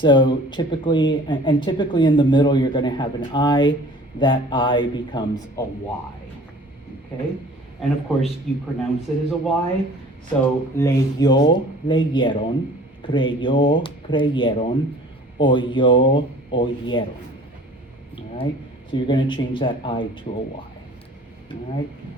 typically, and typically in the middle, you're going to have an I. That I becomes a Y, okay? And of course, you pronounce it as a Y. So leyó, leyeron, creyó, creyeron, oyó, oyeron. All right? So you're going to change that I to a Y. All right?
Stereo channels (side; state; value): both; normal; correlation 0.48